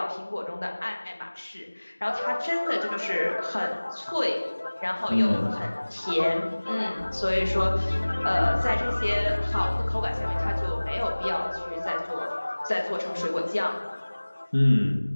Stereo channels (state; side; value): inverted; both; correlation -1.00